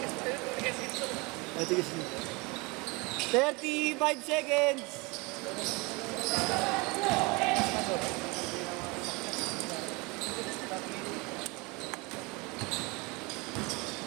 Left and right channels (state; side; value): quieter; left; 26.8 dB